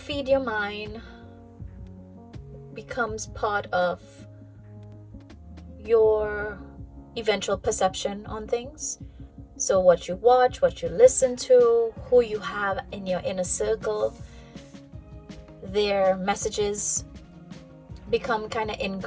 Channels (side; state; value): both; identical; correlation 1.00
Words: your mind becomes part of your eventual perception on things. So what you watch, what you listen to, who you have in your inner circle, their messages become kind of